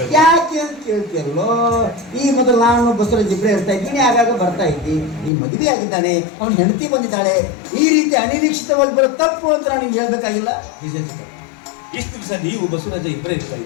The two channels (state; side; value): drops out; right; at 5.3 s